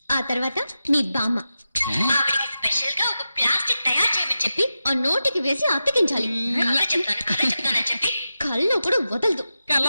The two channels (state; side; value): inverted; both; correlation -0.91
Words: ఆ తర్వాత మీ బామ్మ, ఆవిడికి స్పెషల్ గా ఒక ప్లాస్టిక్ తయారు చేయమని చెప్పి ఆ నోటికి వేసి అతికించాలి. చెప్తానని చెప్పి కళ్ళు కూడా వదలదు.